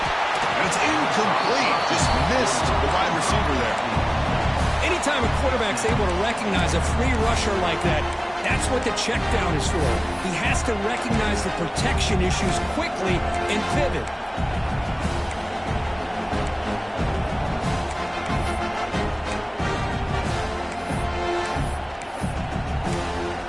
it's incomplete. Just missed the wide receiver there. Anytime a quarterback's able to recognize a free rusher like that, that's what the check down is for. He has to recognize the protection issues quickly and pivot.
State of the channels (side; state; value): both; identical; correlation 1.00